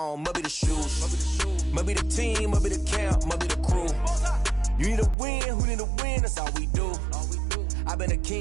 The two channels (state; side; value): drops out; left; at 5.2 s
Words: must be the shoes, must be the team, must be the camp, must be the crew. You need a win, who need a win, that's all we do. I've been a